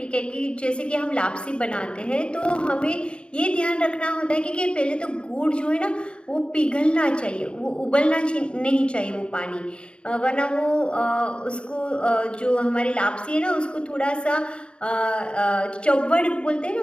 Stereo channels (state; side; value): late; right; 0.054 ms